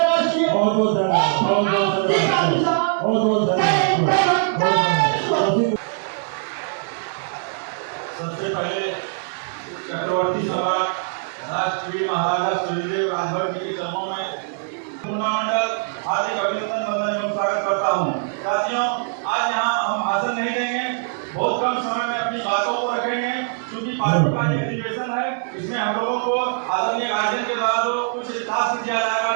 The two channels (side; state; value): left; silent; digital silence